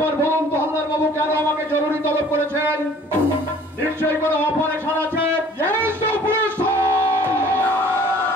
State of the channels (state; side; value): normal; both; correlation 0.52